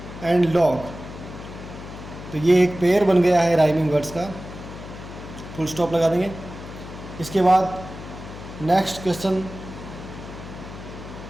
and log. तो ये एक पेयर बन गया है राइमिंग वर्ड्स का। फुल स्टॉप लगा देंगे। इसके बाद नेक्स्ट क्वेश्चन,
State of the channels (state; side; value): noise; left; hum, 12 dB below the sound